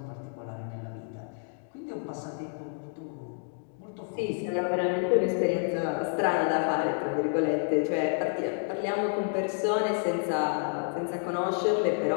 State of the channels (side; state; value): right; silent; 58 dB below the other